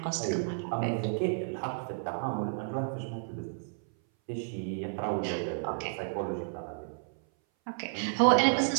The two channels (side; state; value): left; silent; 57 dB below the other